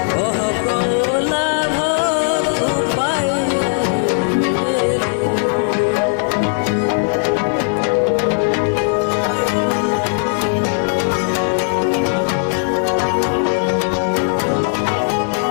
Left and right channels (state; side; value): silent; right; 66 dB below the other